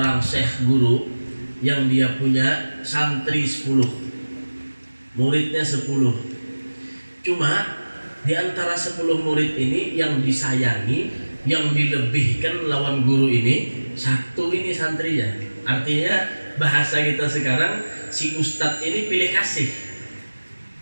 syekh guru yang dia punya santri 10, muridnya 10. Cuma di antara 10 murid ini yang disayangi, yang dilebihkan lawan guru ini, satu ini santrinya. Artinya bahasa kita sekarang, si ustadz ini pilih kasih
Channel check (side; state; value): both; inverted; correlation -1.00